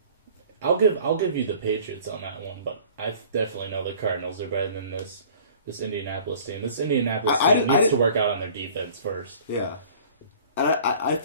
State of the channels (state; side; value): inverted; both; correlation -0.49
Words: I'll give you the Patriots on that one, but I definitely know the Cardinals are better than this Indianapolis team. This Indianapolis team needs to work out on their defense first. Yeah, and I